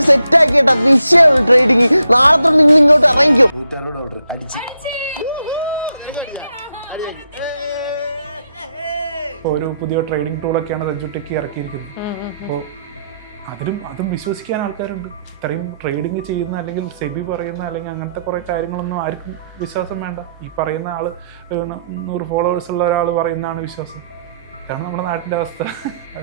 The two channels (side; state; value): both; inverted; correlation -0.79